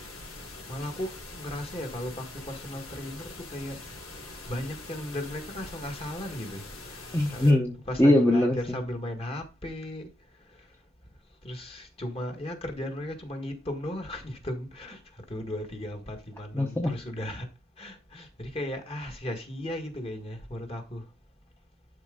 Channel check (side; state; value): both; normal; correlation 0.84